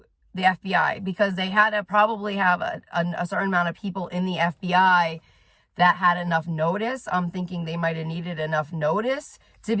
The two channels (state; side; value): identical; both; correlation 1.00